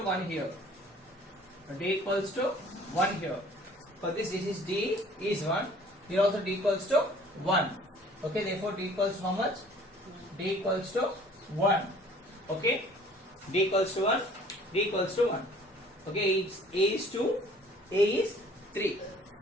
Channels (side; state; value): both; normal; correlation 0.53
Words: 1 here. D equals to 1 here. For this is D is 1. Here also D equals to 1. Okay, therefore D equals to how much? D equals to 1. Okay, D equals to 1. D equals to 1. Okay, A is 2, A is 3.